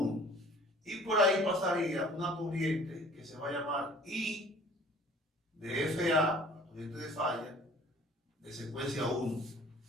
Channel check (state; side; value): normal; both; correlation 0.50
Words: y por ahí pasaría una corriente que que se va a llamar I de FA, corriente de falla, de secuencia 1.